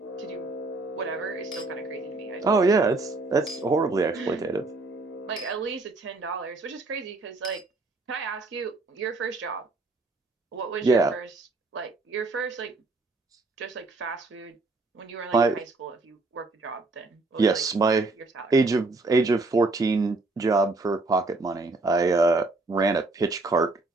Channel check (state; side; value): quieter; left; 3.3 dB